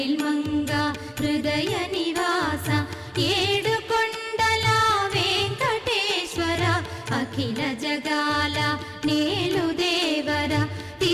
మంగ హృదయ నివాస ఏడు కొండల వెంకటేశ్వర అఖిల జగాల నేలు దేవర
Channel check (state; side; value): identical; both; correlation 1.00